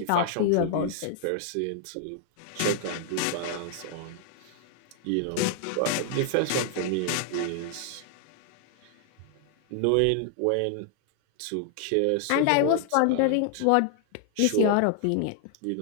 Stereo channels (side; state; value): both; different; correlation 0.00